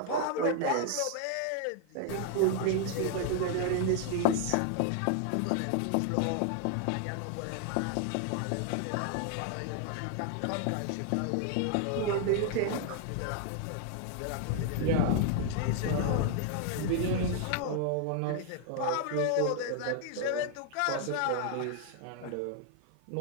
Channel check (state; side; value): different; both; correlation 0.00